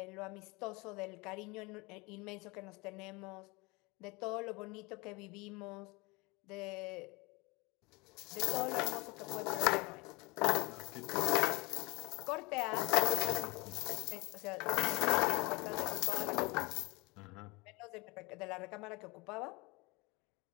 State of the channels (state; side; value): quieter; right; 25.5 dB